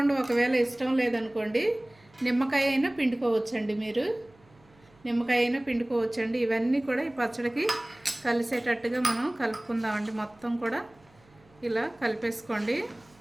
ఒకవేళ ఇష్టం లేదనుకోండి, నిమ్మకాయ అయినా పిండుకోవచ్చండి. మీరు నిమ్మకాయ అయినా పిండుకోవచ్చండి. ఇవన్నీ కూడా ఈ పచ్చడికి కలిసేటట్టుగా మనం కలుపుకుందామండి. మొత్తం కూడా ఇలా కలిపేసుకోండి.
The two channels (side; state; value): right; noise; hum, 30 dB below the sound